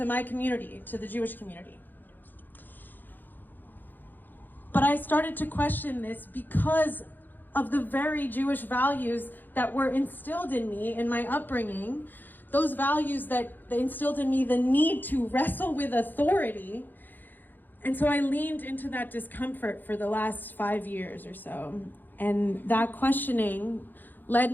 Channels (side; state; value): right; late; 0.089 ms